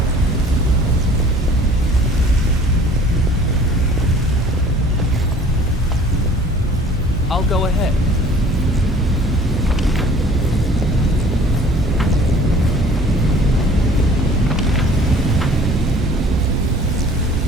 I'll go ahead.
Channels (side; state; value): both; normal; correlation 0.50